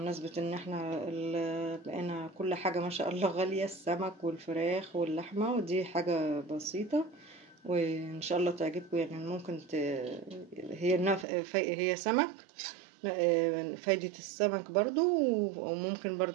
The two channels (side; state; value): left; drops out; at 11.2 s